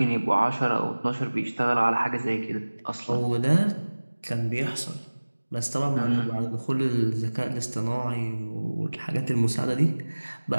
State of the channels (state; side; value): inverted; both; correlation -1.00